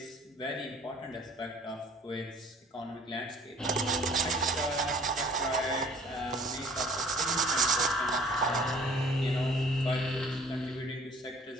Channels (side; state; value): both; normal; correlation 0.53